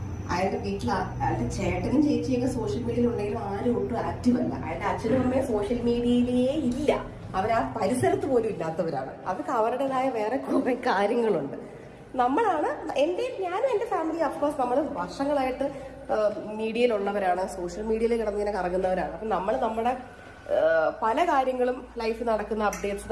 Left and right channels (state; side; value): identical; both; correlation 1.00